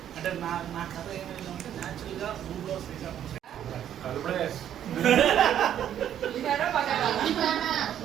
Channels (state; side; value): quieter; left; 10.3 dB